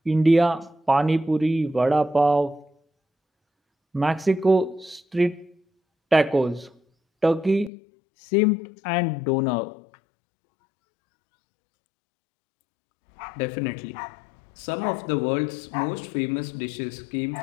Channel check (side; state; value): right; drops out; at 7.7 s